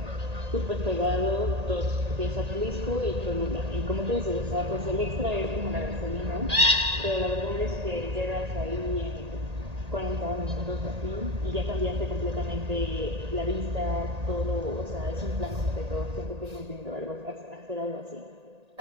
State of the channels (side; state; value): left; late; 1.8 ms